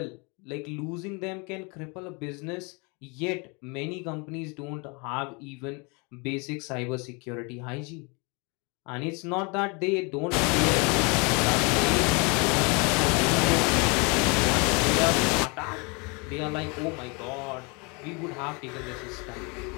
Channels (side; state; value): right; quieter; 30.8 dB